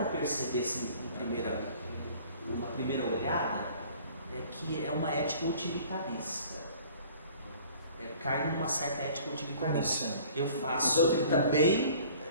perceber assim, numa primeira olhada é que é uma ética utilitarista. Cai numa certa ética utilitarista. Eu faço o bem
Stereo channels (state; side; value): inverted; both; correlation -0.51